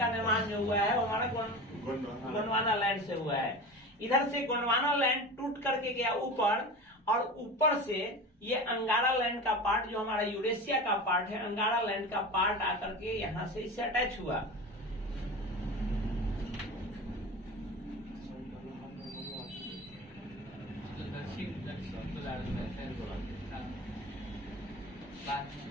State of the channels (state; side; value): normal; both; correlation 0.30